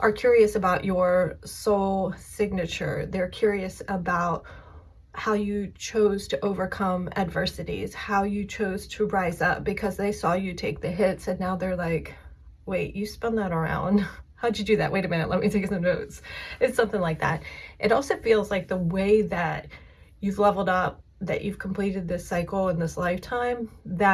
curious about your soul signature. They're curious about how you chose to overcome adversities, how you chose to rise up because they saw you take the hits and now they're like, wait, you spun that around. How'd you do that? Wait a minute, let me take some notes. It's something like that. It also feels like the way that you've leveled up, that you've completed this cycle in this lifetime,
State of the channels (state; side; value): identical; both; correlation 1.00